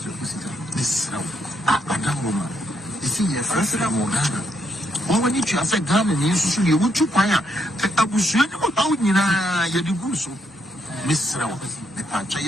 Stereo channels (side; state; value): both; normal; correlation 0.76